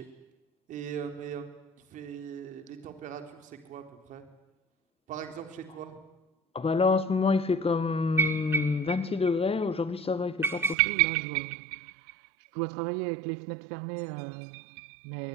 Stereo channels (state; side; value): drops out; left; at 10.8 s